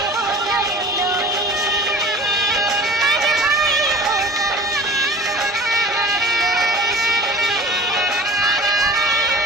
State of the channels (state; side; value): normal; both; correlation 0.42